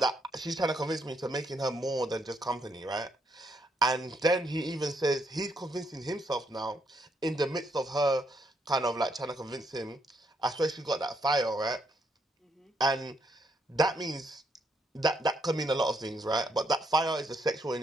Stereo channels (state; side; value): normal; both; correlation 0.75